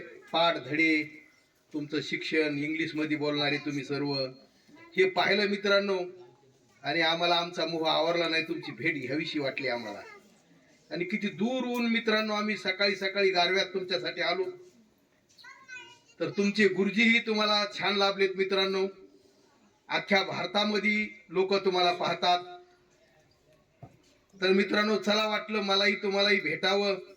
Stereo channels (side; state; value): both; identical; correlation 1.00